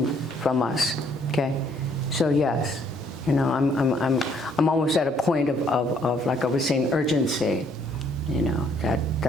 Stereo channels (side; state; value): both; normal; correlation 0.65